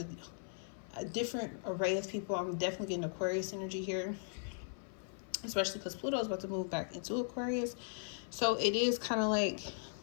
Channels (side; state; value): right; silent; 52 dB below the other